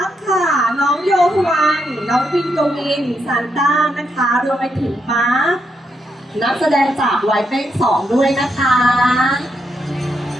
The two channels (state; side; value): normal; both; correlation 0.80